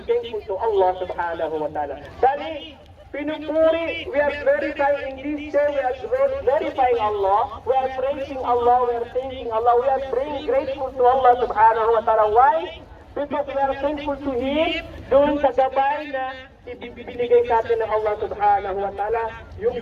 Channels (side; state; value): both; identical; correlation 1.00